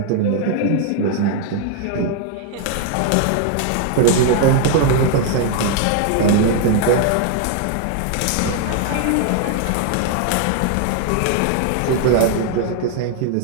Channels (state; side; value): different; both; correlation 0.00